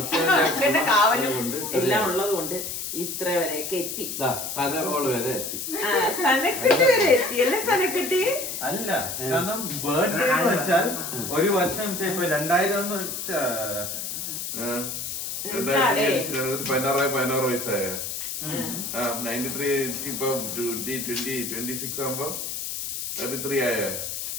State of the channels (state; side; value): noise; left; hiss, 5 dB below the sound